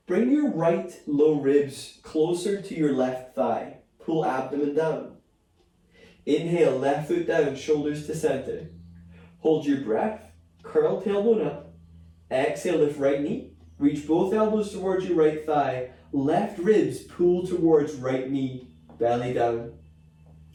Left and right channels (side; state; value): both; identical; correlation 1.00